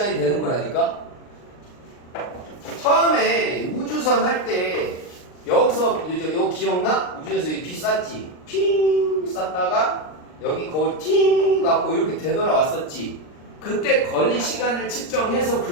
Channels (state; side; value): late; right; 39 ms